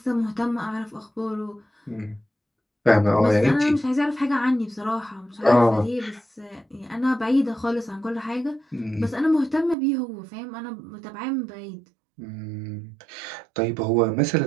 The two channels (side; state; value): left; drops out; at 9.8 s